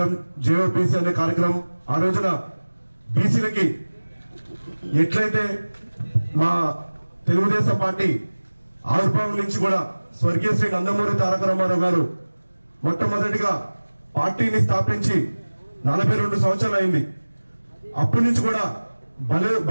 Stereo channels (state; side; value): inverted; both; correlation -1.00